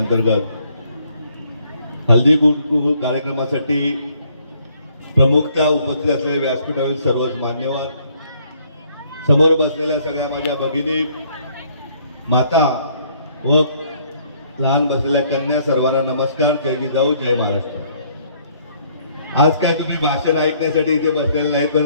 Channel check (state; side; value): inverted; both; correlation -0.65